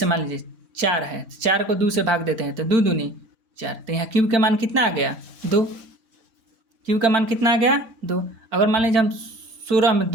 मान लीजिए 4 है, 4 को 2 से भाग देते हैं तो 2 दूनी 4, तो यहाँ q का मान कितना आ गया, 2। q का मान कितना आ गया, 2। अगर मान लीजिए हम 16 में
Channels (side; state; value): left; late; 4.5 ms